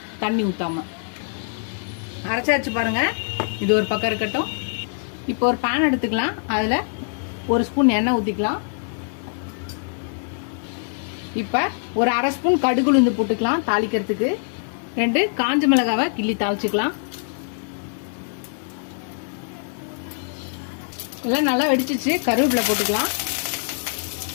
தண்ணி ஊற்றாம. அரைச்சாச்சு பாருங்க. இது ஒரு பக்கம் இருக்கட்டும். இப்போ ஒரு பேன் எடுத்துக்கலாம். அதில் 1 ஸ்பூன் எண்ணெய் ஊற்றிக்கலாம். இப்போ ஒரு 1/2 ஸ்பூன் கடுகு உளுந்து போட்டுக்கலாம் தாளிக்கிறதுக்கு. 2 காஞ்ச மிளகாவை கிள்ளி தாளிச்சுக்கலாம். எல்லாம் நல்லா வெடிச்சிச்சு. கருவேப்பிலை போட்டுக்கலாம்.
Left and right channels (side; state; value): right; silent; digital silence